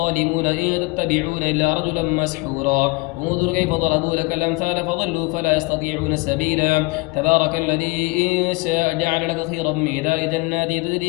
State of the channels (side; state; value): right; quieter; 25.5 dB